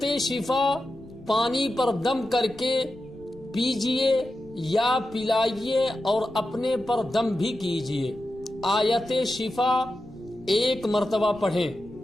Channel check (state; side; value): noise; left; rumble, 22 dB below the sound